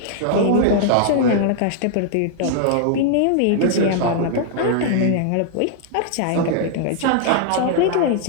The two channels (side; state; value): both; different; correlation -0.01